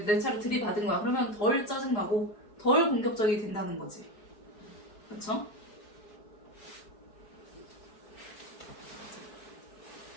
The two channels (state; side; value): late; right; 4.7 ms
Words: 내 차를 들이받은 거야. 그러면 덜 짜증나고 덜 공격적이 된다는 거지. 그렇죠?